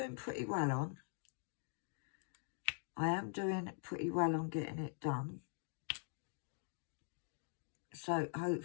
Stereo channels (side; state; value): right; silent; digital silence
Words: pretty well on. I am doing pretty well on getting it done. So